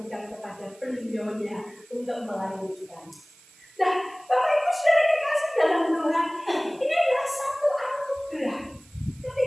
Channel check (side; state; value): right; noise; hiss, 26 dB below the sound